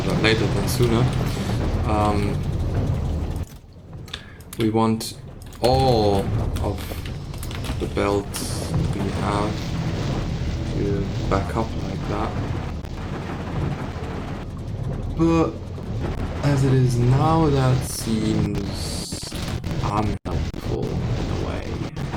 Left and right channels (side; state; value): both; identical; correlation 1.00